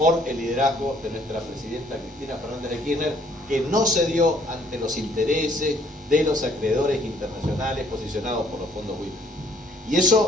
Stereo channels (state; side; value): normal; both; correlation 0.63